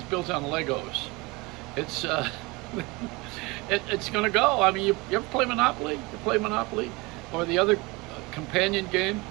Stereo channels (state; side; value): quieter; left; 24.6 dB